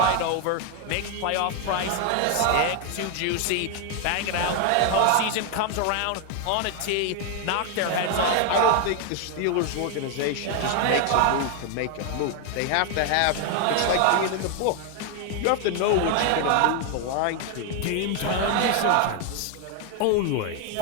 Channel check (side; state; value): both; different; correlation 0.01